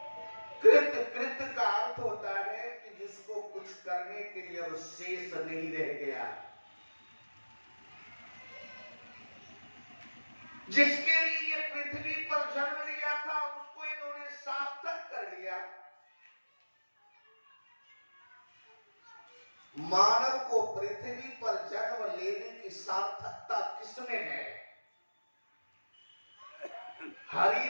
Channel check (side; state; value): both; inverted; correlation -1.00